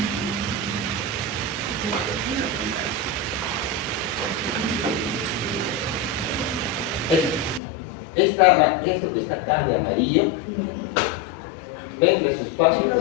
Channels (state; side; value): drops out; right; at 7.6 s